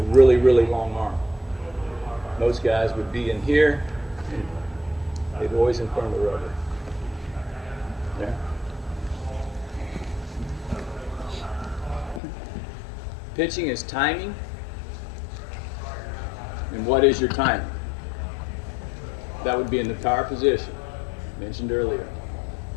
really, really long arm. Most guys would be in here, and they'd always in front of the rubber. Yeah. Pitching is timing. And what is your timing? That would be in the power position, mentioned earlier.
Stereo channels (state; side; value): drops out; right; at 12.2 s